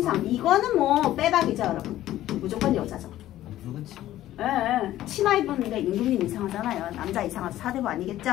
이거는 뭐 빼박이죠, 여러분. 무조건 여자죠. 예, 치마 입었는데 임금님 이상하잖아요. 남자 이상하죠. 사대부 아니겠죠?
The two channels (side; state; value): right; quieter; 13.9 dB